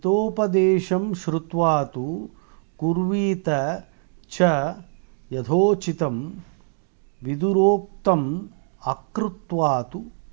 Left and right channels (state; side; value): silent; left; 56 dB below the other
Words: శ్రుత్వాతు కుర్వీత చ యథోచితం విదురోక్తం అకృత్వాతు